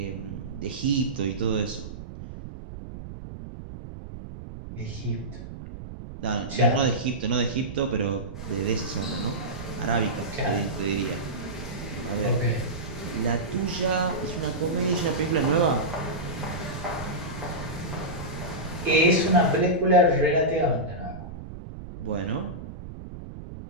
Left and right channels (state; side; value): noise; right; rumble, 11 dB below the sound